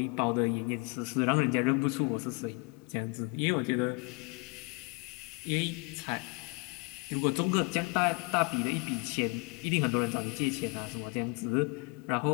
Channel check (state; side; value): quieter; right; 31.0 dB